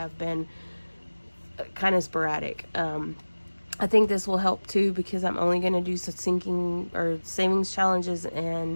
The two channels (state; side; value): inverted; both; correlation -1.00